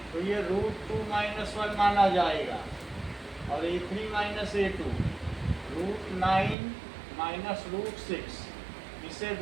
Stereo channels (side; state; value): left; drops out; at 6.6 s